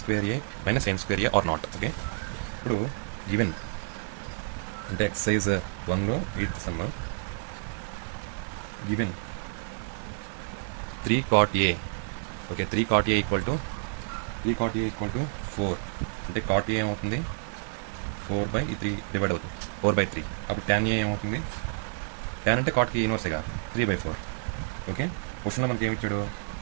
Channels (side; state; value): left; silent; digital silence